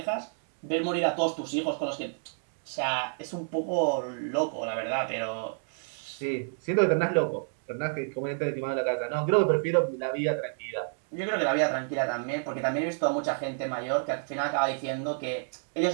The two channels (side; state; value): left; silent; digital silence